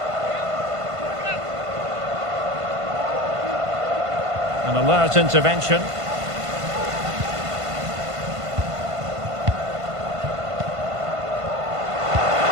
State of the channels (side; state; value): left; late; 1.5 ms